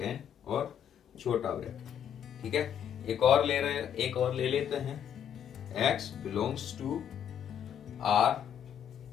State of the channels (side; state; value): right; quieter; 9.0 dB